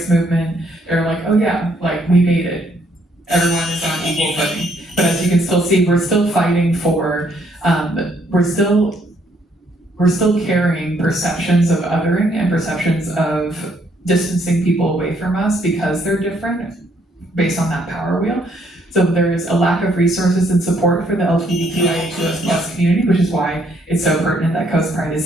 movement. They're like, oh yeah, like we made it. Everyone is on equal footing. But as you can still see, we're still fighting for, we're still carrying perceptions of othering and perceptions of distancing people away from us because they're different based on that power wheel. So there's a lack of resources and support for the LGBTQIA2S+ community, which is why it's so pertinent that CoastPride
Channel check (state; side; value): normal; both; correlation 0.69